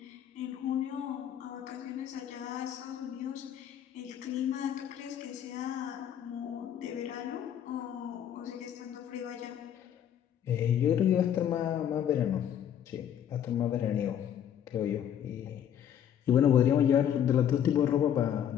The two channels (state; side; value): quieter; right; 9.6 dB